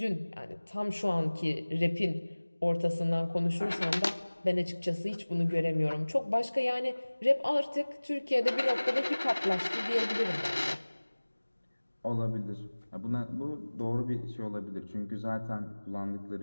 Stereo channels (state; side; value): inverted; both; correlation -1.00